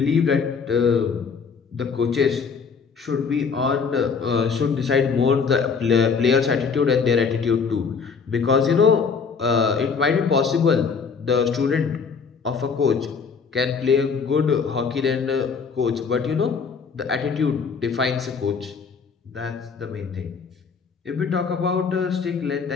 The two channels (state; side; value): quieter; right; 5.6 dB